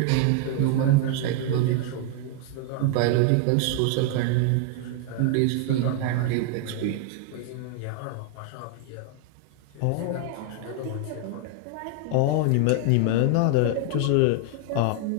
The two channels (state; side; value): different; both; correlation 0.00